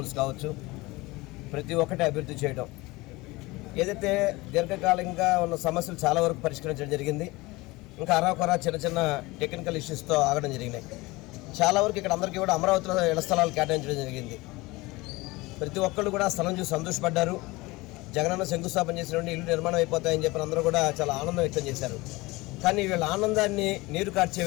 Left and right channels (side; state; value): right; quieter; 21.9 dB